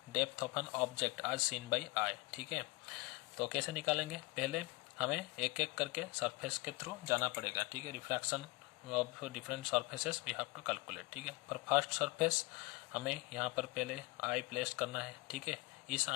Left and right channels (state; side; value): quieter; right; 23.6 dB